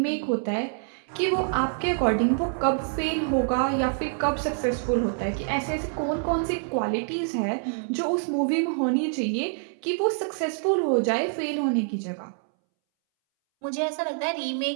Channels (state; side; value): silent; left; 61 dB below the other